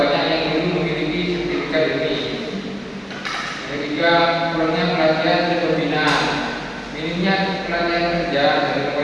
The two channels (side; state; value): both; identical; correlation 1.00